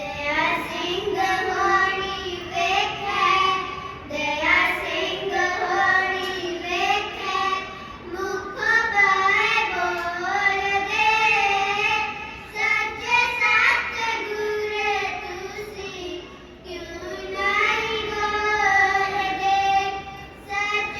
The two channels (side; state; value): both; identical; correlation 1.00